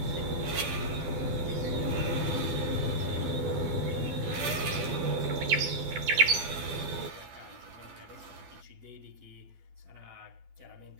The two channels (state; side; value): late; left; 12 ms